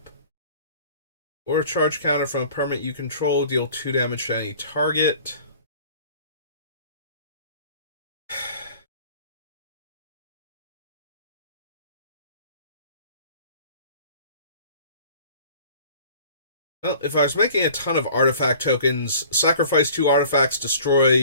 Or a charge counter from a permanent you control, deal 2 damage to any target. Well, if I was making a ton of artifact tokens, sacrifice 2 artifacts,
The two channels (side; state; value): both; inverted; correlation -0.49